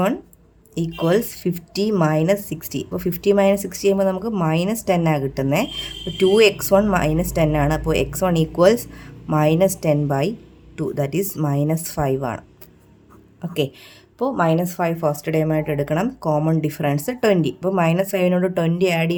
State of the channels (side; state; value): both; identical; correlation 1.00